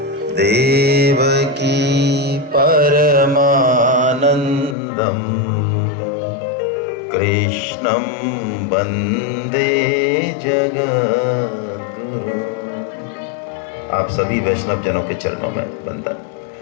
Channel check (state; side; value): drops out; right; at 4.8 s